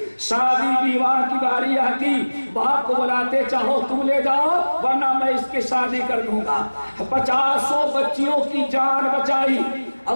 شادی بیواہ کی باری آتی، باپ کو بلاتے چاہو تم لے جاؤ ورنہ میں اس کی شادی کر دوں گا. 50 بچیوں کی جان بچائی.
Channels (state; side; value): inverted; both; correlation -1.00